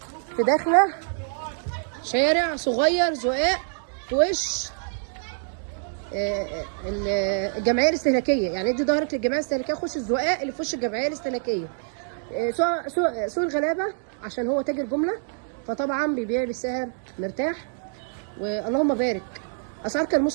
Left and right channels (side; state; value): left; silent; digital silence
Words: في داخله شارع صغير زقاق في وش الجمعيه الاستهلاكيه. يعني ادي ظهرك للجمعيه الاستهلاكيه، خش الزقاق اللي في وش الجمعيه الاستهلاكيه. سوق الغلابه عشان هو تاجر جمله، فطبعا بيبيع بسعر مرتاح، واللهم بارك. اسعار